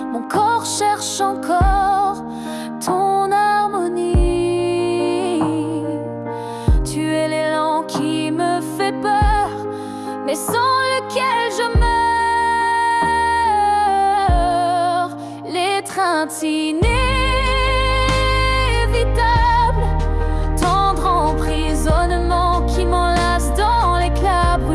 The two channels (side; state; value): both; identical; correlation 1.00